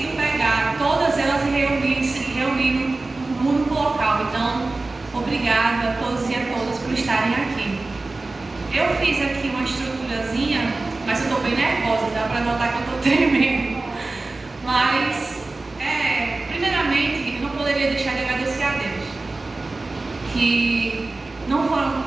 pegar todas elas e reunir num único local. Então, obrigada a todos e a todas por estarem aqui. Eu fiz aqui uma estruturazinha, mas eu estou bem nervosa, dá para notar que eu estou tremendo. Mas, primeiramente, eu não poderia deixar de agradecer a Deus. Que não foram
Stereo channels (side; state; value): left; quieter; 3.3 dB